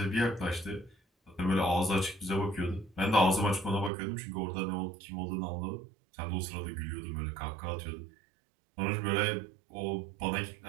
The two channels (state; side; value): drops out; left; at 3.9 s